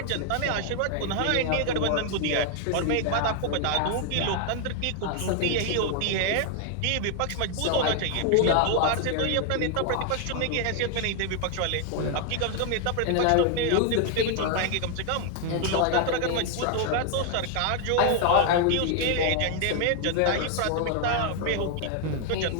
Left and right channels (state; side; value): different; both; correlation 0.00